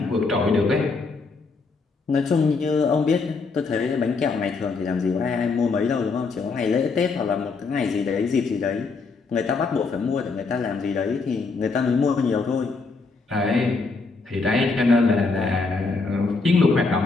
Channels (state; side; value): quieter; right; 4.2 dB